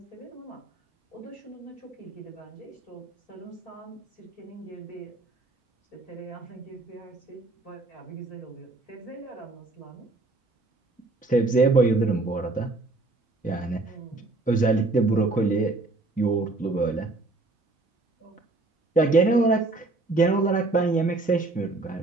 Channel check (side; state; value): left; quieter; 3.2 dB